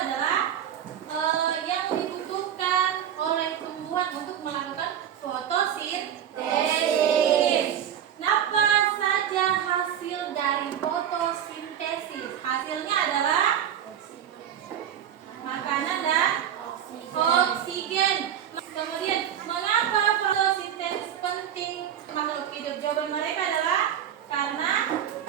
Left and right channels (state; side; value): quieter; left; 9.7 dB